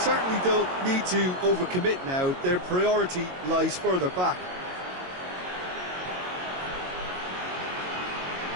don't need to overcommit now. Their priority lies further back.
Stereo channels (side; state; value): left; late; 22 ms